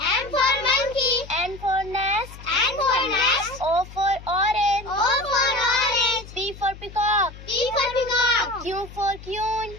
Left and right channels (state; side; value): noise; left; hum, 16 dB below the sound